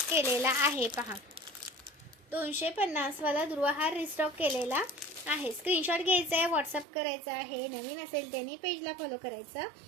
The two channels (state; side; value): drops out; left; at 6.9 s